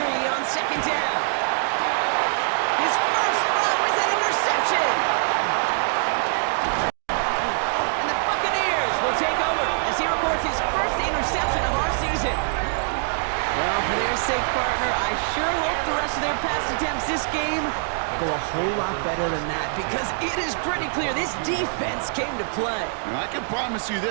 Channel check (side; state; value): left; silent; digital silence